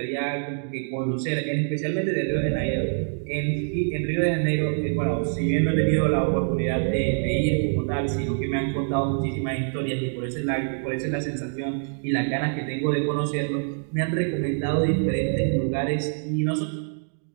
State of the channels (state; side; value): silent; left; digital silence